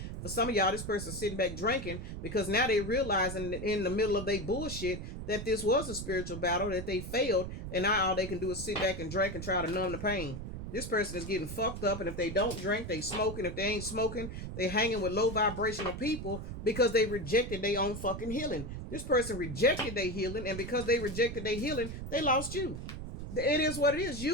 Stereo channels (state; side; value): noise; right; rumble, 7 dB below the sound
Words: For some of y'all, this person's sitting back drinking because now they realizing in the middle of their bullshit that this was a spiritual battle, that they failed, and now all they can do is sit back and drink and try to numb the pain. This person is getting fucked up, and if they don't drink, they smoking. If they ain't smoking, they hanging with low vibrational people because they rejected their own fucking healing. This person rejected their healing, and because they rejected their healing, they lost you. It is what it is.